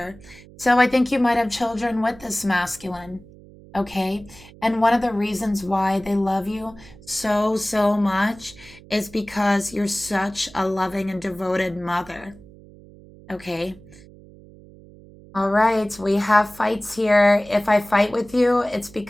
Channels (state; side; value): noise; right; hum, 22 dB below the sound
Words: So I think you might have children with this masculine. Okay. And one of the reasons why they love you so, so much is because you're such a loving and devoted mother. Okay. All right, we have fights here. If I fight with you, it's